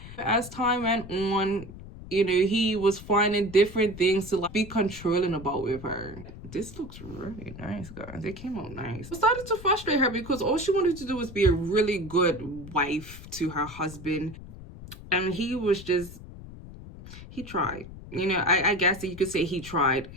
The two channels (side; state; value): left; noise; rumble, 14 dB below the sound